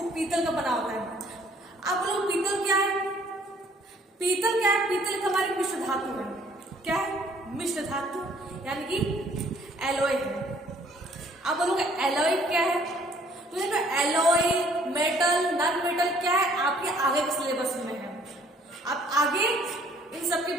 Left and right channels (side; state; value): both; normal; correlation 0.60